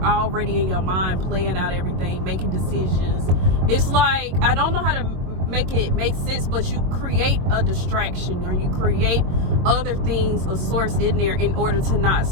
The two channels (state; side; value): late; left; 22 ms